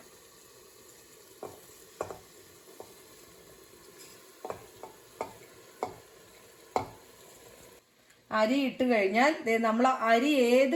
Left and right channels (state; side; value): identical; both; correlation 1.00